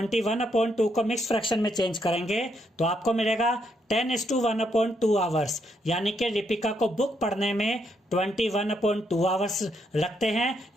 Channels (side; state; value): both; normal; correlation 0.76